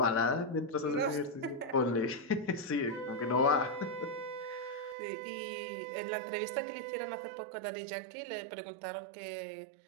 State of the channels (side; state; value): left; drops out; at 5.0 s